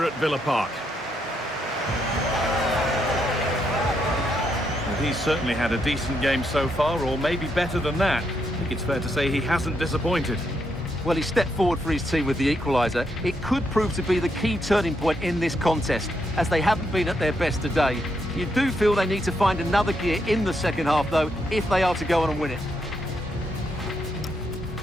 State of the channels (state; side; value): normal; both; correlation 0.79